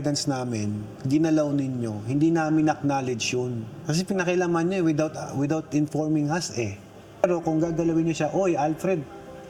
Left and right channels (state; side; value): identical; both; correlation 1.00